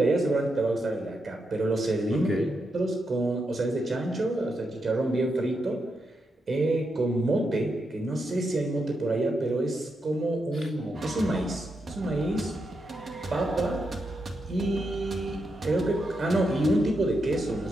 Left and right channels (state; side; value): normal; both; correlation 0.84